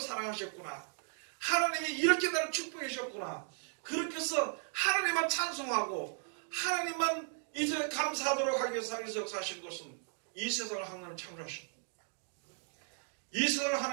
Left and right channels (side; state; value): left; silent; 54 dB below the other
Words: 하나님이 이렇게 나를 축복해 주셨구나. 그렇게 해서 하나님만 찬송하고 하나님만 이제 감사하도록 하기 위해서 하나님께서 역사하신 것은 이 세상을 하나님 창조하신 이 세상을